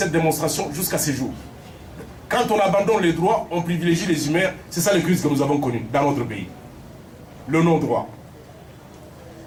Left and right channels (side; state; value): both; identical; correlation 1.00